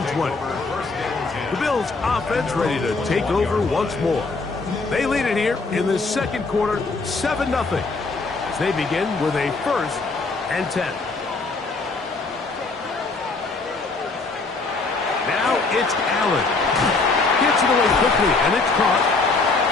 20. The Bills offense ready to take over once more. They lead it here in the second quarter, 7-0, as they begin with a 1st and 10. Now it's Allen. Gets it away quickly, and it's caught.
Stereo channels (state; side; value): quieter; right; 3.8 dB